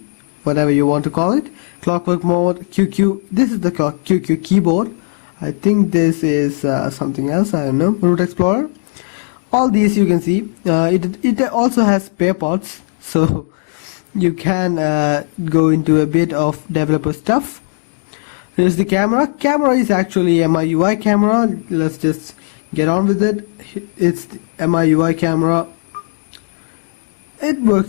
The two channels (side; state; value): right; silent; digital silence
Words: whatever you want to call it. Clockwork mode. QQ. This is the QQ keyboard. I think this is something else. I don't know. Root Explorer. All these you can see. It also has spare parts, so you can go into a bit of developer stuff. Here's the camera. Camera is actually MIUI camera. Let's just get on with it. It's the MIUI camera. It